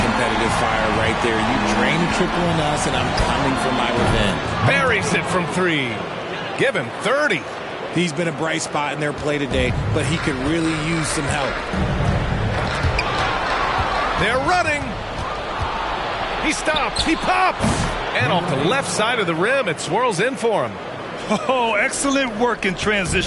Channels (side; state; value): both; identical; correlation 1.00